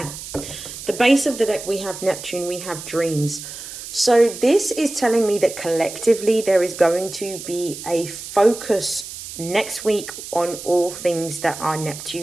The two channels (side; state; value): right; noise; hiss, 11 dB below the sound